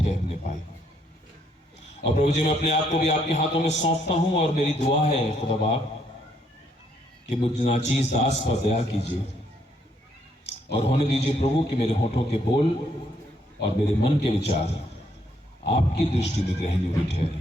पाए। और प्रभु जी, मैं अपने आप को भी आपके हाथों में सौंपता हूं, और मेरी दुआ है खुदा बाप कि मुझ नाचीज दास पर दया कीजिए और होने दीजिए प्रभु कि मेरे होठों के बोल और मेरे मन के विचार आपकी दृष्टि में ग्रहणीय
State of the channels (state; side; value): normal; both; correlation 0.71